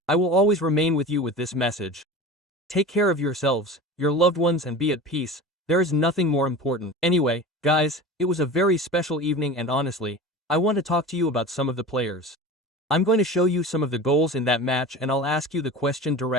I will always remain with you with this message. Take care of yourselves, your loved ones and be at peace. There is nothing more important. Anyway, guys, it was a very special evening and honestly, I want to talk to you about some of the players. I'm going to show you some of the goals in that match and I'll ask you the question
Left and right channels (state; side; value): normal; both; correlation 0.33